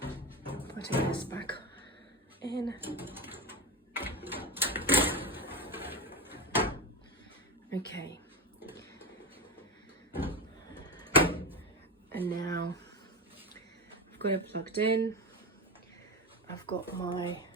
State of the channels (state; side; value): normal; both; correlation 0.17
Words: Putting this back in. Okay, and now I've got it plugged in. I've got my